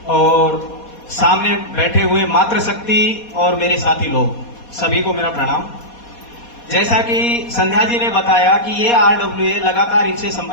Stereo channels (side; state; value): right; late; 4.2 ms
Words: और सामने बैठे हुए मातृशक्ति और मेरे साथी लोग, सभी को मेरा प्रणाम। जैसा कि संध्या जी ने बताया कि ये आरडब्ल्यूए लगातार इनसे